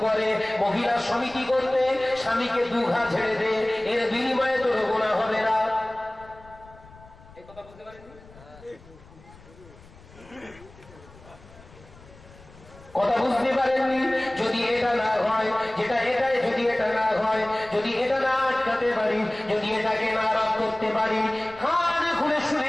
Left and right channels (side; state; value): left; noise; rumble, 23 dB below the sound